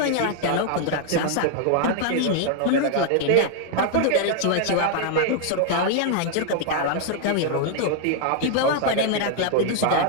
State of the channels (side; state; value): both; different; correlation 0.00